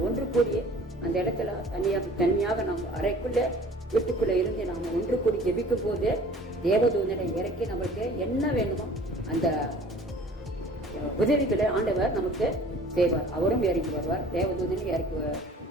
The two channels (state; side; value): normal; both; correlation 0.49